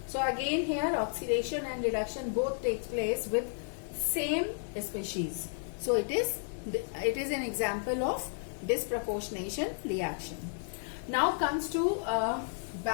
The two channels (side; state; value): right; silent; digital silence